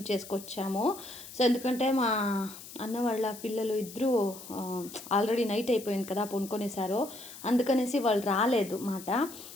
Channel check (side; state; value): left; noise; hiss, 15 dB below the sound